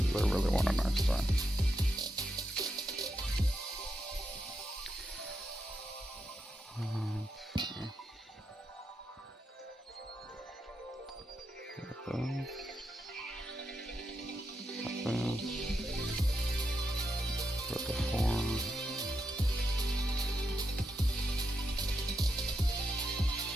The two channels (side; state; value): both; normal; correlation 0.85